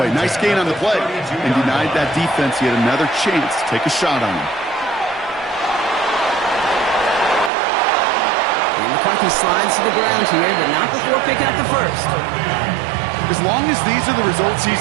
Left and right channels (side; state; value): left; drops out; at 7.5 s